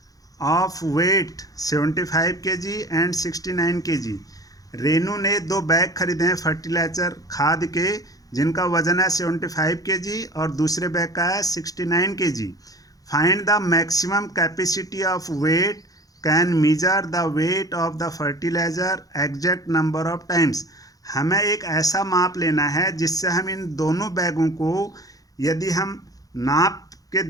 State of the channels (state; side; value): late; right; 0.17 ms